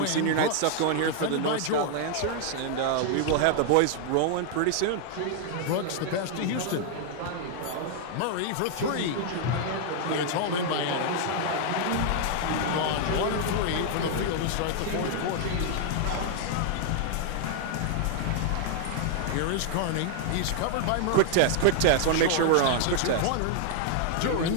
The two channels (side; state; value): both; different; correlation 0.00